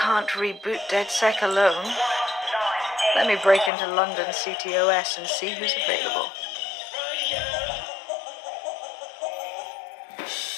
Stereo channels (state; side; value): drops out; right; at 3.7 s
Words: reboot DedSec alone. Let me break into London CTOS and see who's available.